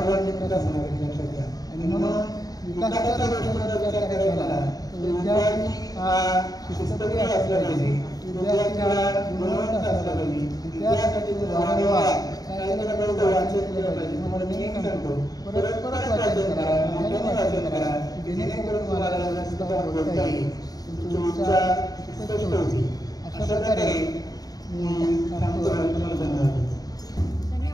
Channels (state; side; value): late; right; 0.18 ms